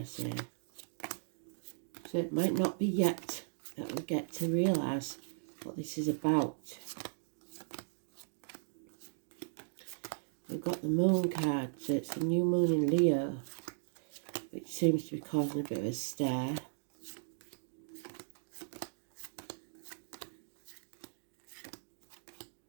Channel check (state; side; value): silent; left; digital silence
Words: say. So it might not be yet that we get to realise what this is about. We've got the Moon card, so it's the new moon in Leo, which seems to be causing a bit of a stir.